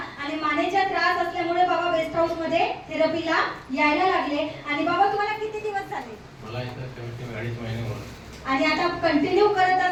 आणि मानेचा त्रास असल्यामुळे बाबा बेस्ट हाऊस मध्ये थेरपीला यायला लागले. आणि बाबा तुम्हाला किती दिवस झाले? मला इथं कमीत कमी 2.5 महिने होते. आणि आता कंटिन्यू करत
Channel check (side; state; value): both; identical; correlation 1.00